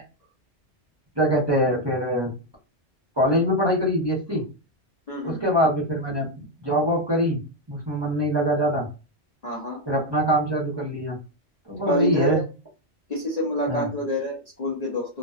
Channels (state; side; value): normal; both; correlation 0.03